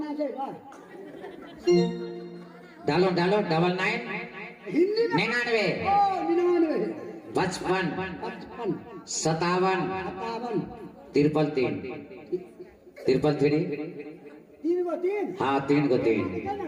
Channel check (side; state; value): both; identical; correlation 1.00